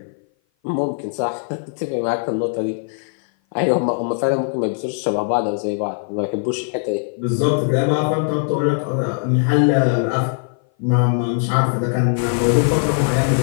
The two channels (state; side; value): silent; right; 57 dB below the other